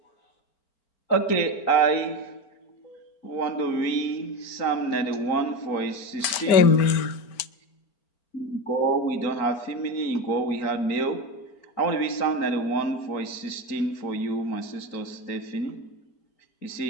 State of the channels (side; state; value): right; late; 4.4 ms